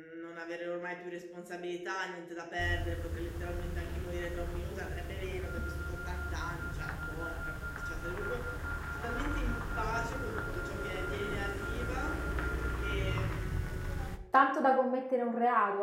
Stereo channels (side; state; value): both; identical; correlation 1.00